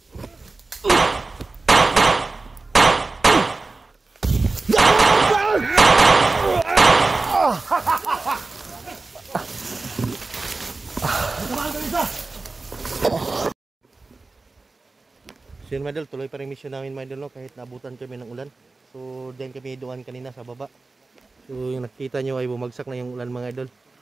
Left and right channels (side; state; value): left; quieter; 3.6 dB